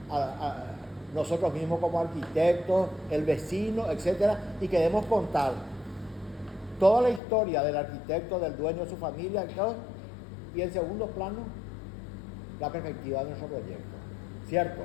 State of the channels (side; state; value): right; drops out; at 7.2 s